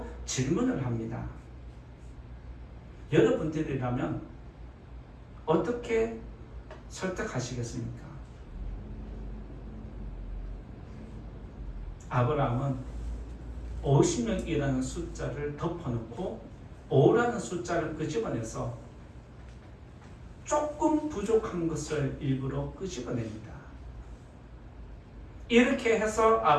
질문을 합니다. 여러분들이라면 어떻게 설득하시겠습니까? 아브라함은 50명이라는 숫자를 덮어놓고 5라는 숫자를 끄집어내서 조금 부족한 것을 일부러 끄집어냅니다. 이렇게 해서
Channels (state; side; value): identical; both; correlation 1.00